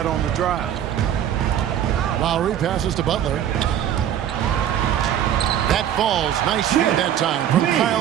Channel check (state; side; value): quieter; left; 10.3 dB